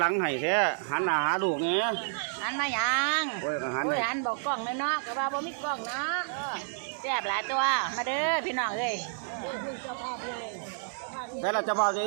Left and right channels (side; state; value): left; silent; digital silence